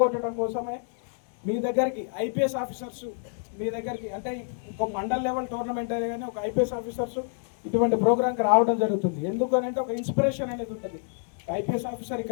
కోసమే మీ దగ్గరికి ఐపీఎస్ ఆఫీసర్స్, మీ దగ్గరికి అంటే ఒక మండల్ లెవెల్ టోర్నమెంట్ అయితే కానీ ఒక ఐపీఎస్ ఆఫీసర్స్ ఇటువంటి ప్రోగ్రామ్కి రావడం జరుగుతుంది. ఎందుకనంటే ఒక ఇన్స్పిరేషన్ అనేది ఉంటుంది. ఐపీఎస్ ఆఫీసర్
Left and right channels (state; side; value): silent; right; 58 dB below the other